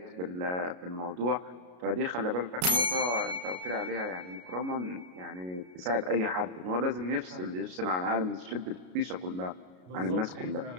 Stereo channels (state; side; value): late; left; 33 ms